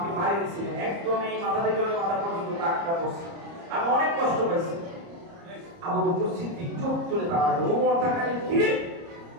মারি দিয়েছিলেন, একদম এই মাথা থেকে ওই মাথা পর্যন্ত দাগটা পড়ছে, আমি অনেক কষ্ট পাইছি। আবু বকর সিদ্দিক চোখ তুলে তাকালো, ওমর তাকালে, কি রে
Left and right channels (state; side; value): late; left; 30 ms